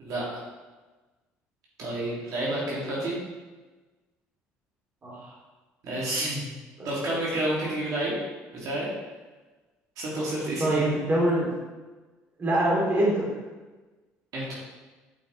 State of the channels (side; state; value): both; normal; correlation 0.61